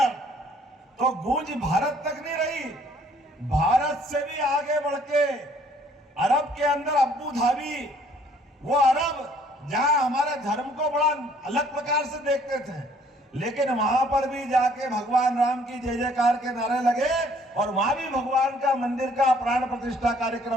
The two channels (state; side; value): normal; both; correlation 0.60